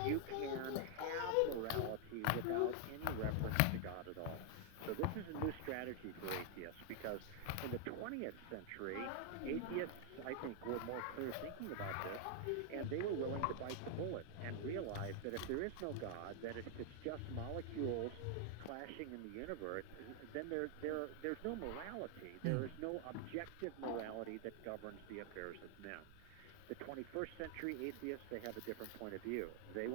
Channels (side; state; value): both; different; correlation 0.00